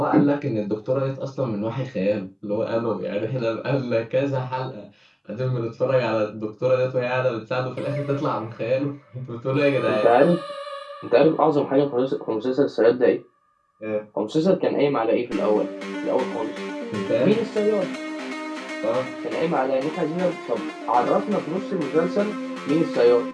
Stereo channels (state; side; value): identical; both; correlation 1.00